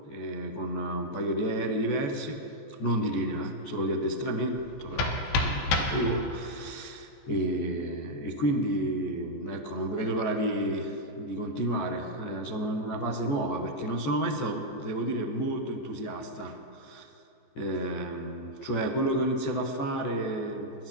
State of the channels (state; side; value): late; right; 14 ms